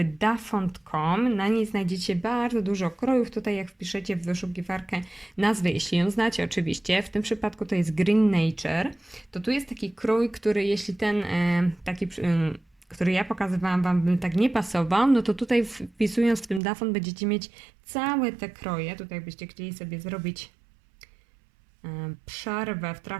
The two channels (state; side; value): drops out; left; at 16.6 s